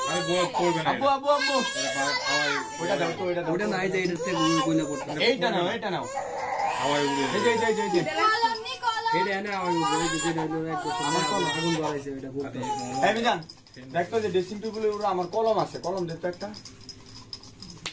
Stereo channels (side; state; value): both; identical; correlation 1.00